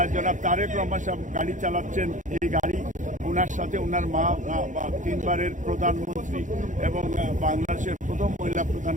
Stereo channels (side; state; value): left; late; 0.36 ms